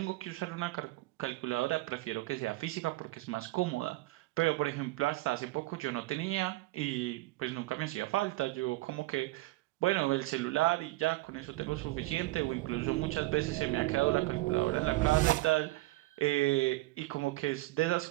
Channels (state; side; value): quieter; left; 19.6 dB